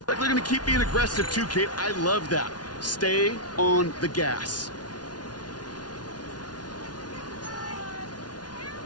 Like they're going to keep being aggressive too, Kate. I love that. Stay on the gas.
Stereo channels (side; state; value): right; late; 0.69 ms